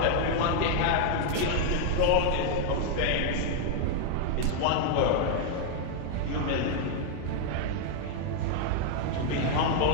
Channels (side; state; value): both; different; correlation 0.00